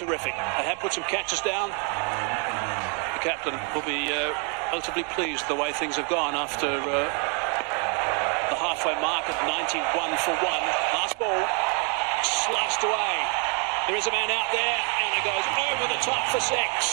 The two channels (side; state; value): left; quieter; 37.8 dB